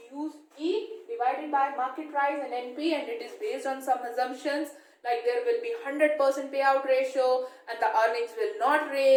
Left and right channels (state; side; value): identical; both; correlation 1.00